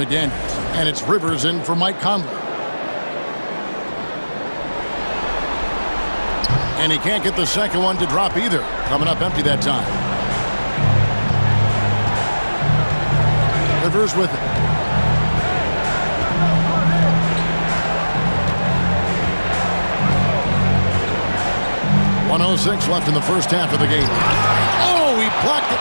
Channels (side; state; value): both; inverted; correlation -1.00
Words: And it's Rivers in for Mike Conley. And he can't get the second one to drop either. Coming up empty that time. Rivers with it. .106 left in the first half of the game. Oh, he blocked it